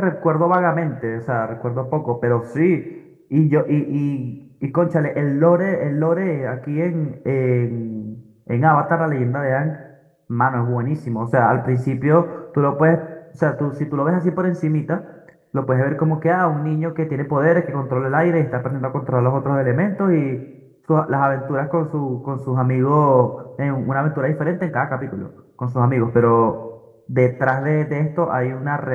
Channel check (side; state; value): both; identical; correlation 1.00